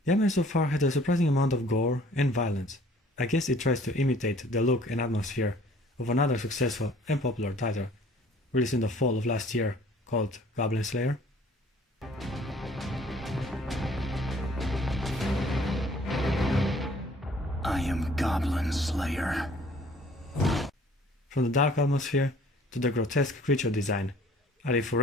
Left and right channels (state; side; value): normal; both; correlation 0.55